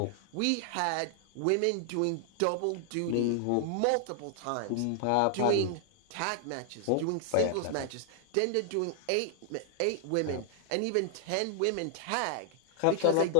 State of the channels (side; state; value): both; different; correlation 0.00